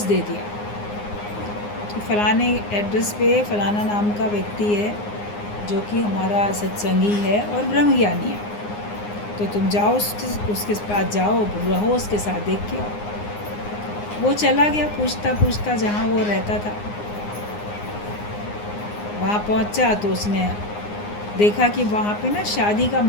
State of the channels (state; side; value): late; right; 9.7 ms